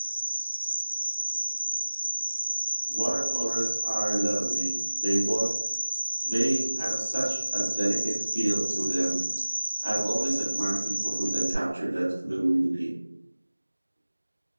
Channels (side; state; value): both; inverted; correlation -1.00